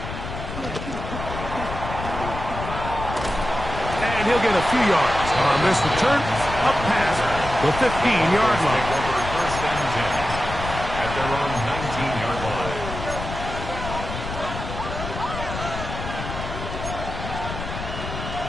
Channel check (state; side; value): noise; left; rumble, 7 dB below the sound